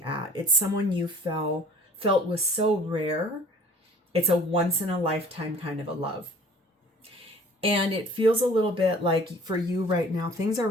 at. It's someone you felt was so rare. It's a once in a lifetime kind of a love. And it feels a little bit like for you right now, things are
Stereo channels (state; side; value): normal; both; correlation 0.49